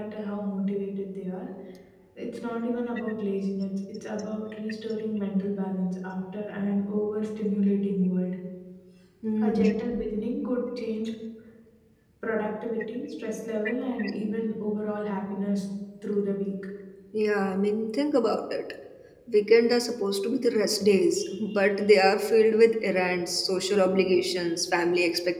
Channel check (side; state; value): both; identical; correlation 1.00